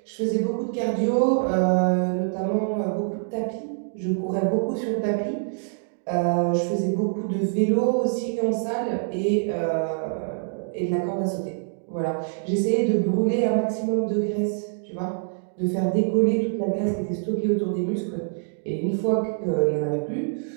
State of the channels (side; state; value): left; silent; digital silence